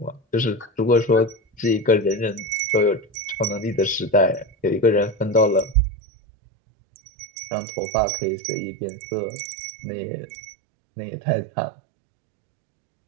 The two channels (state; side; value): drops out; left; at 5.8 s